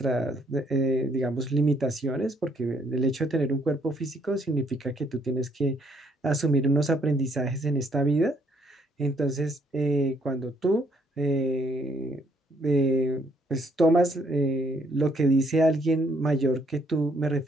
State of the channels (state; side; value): normal; both; correlation 0.68